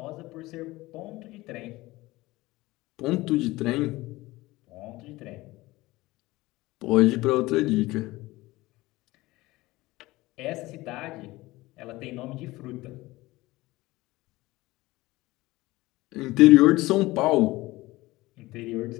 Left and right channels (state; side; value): quieter; right; 19.5 dB